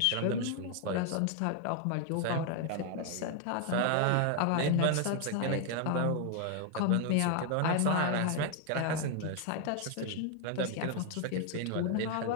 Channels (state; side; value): different; both; correlation 0.00